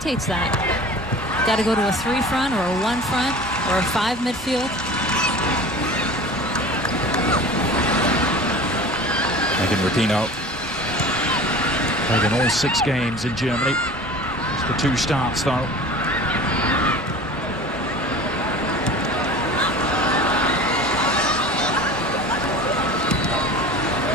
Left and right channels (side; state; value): both; normal; correlation 0.39